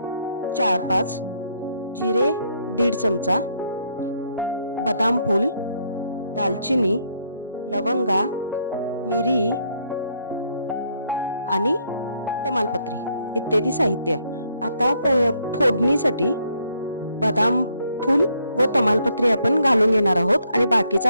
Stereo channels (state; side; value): inverted; both; correlation -0.72